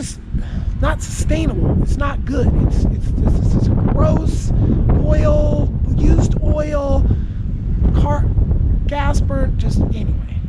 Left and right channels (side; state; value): both; identical; correlation 1.00